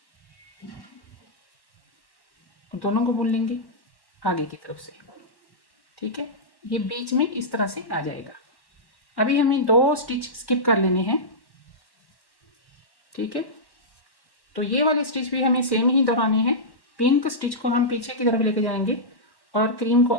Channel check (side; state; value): right; late; 1.1 ms